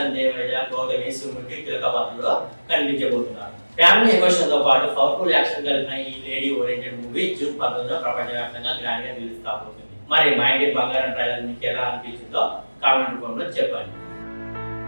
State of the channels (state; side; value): inverted; both; correlation -1.00